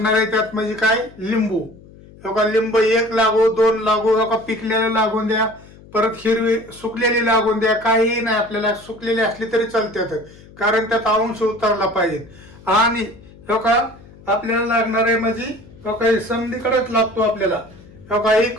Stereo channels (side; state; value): left; noise; hum, 22 dB below the sound